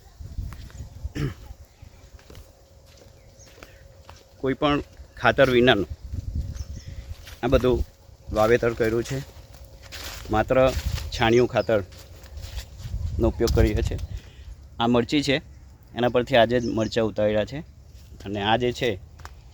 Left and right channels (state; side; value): identical; both; correlation 1.00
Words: કોઈ પણ ખાતર વિનાનું આ બધું વાવેતર કર્યું છે. માત્ર છાણિયું ખાતરનો ઉપયોગ કરીએ છીએ. આ મરચી છે, એના પરથી આજે જ મરચાં ઉતાર્યા છે અને આ જે છે